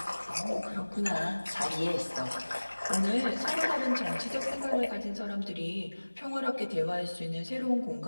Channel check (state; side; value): inverted; both; correlation -1.00